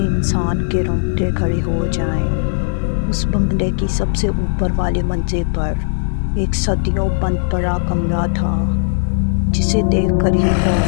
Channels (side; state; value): right; silent; digital silence